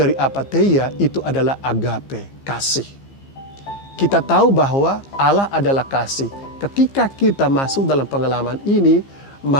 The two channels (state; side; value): late; right; 15 ms